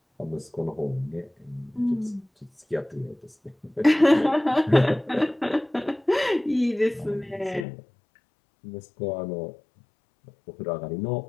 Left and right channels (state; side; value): drops out; right; at 7.7 s